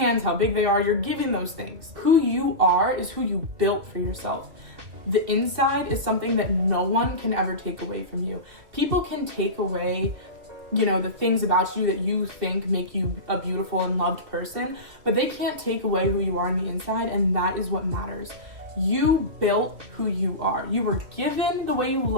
how big they are, you're given those things. Who you are is who you built for yourself. The inside is something that no one can ever take away from you. People can take away the things about you that you think make you a beautiful and loved person, but they can't take away who you are on the inside, and that is what matters. You built who you are. You were given the way you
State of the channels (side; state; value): left; late; 2.4 ms